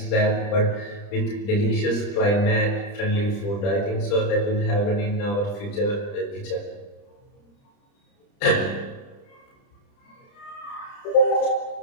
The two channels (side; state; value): right; late; 30 ms